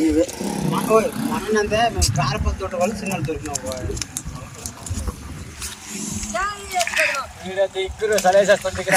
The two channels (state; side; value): identical; both; correlation 1.00